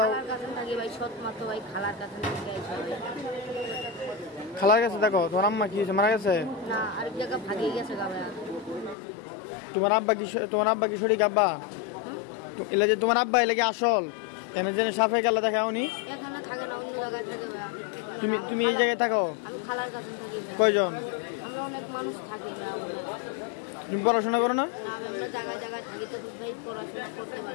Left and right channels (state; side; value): drops out; right; at 9.0 s